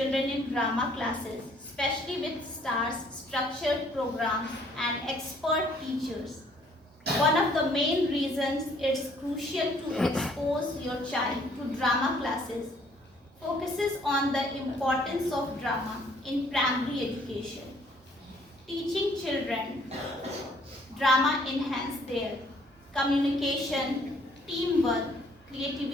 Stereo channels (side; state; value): both; normal; correlation 0.62